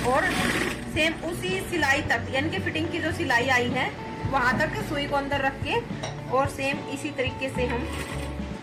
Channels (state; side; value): identical; both; correlation 1.00